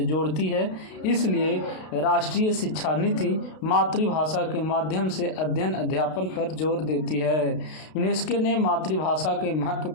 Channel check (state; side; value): late; right; 32 ms